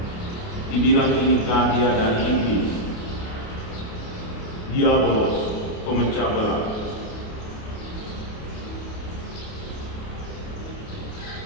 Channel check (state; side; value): late; right; 28 ms